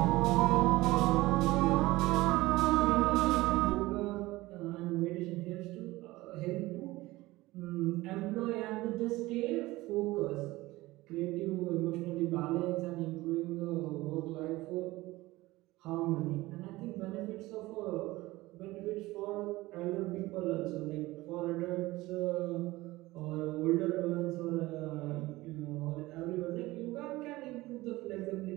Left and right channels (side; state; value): left; quieter; 19.2 dB